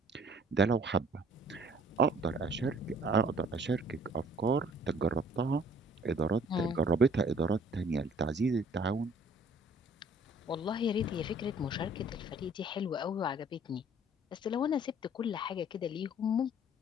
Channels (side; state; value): both; normal; correlation 0.56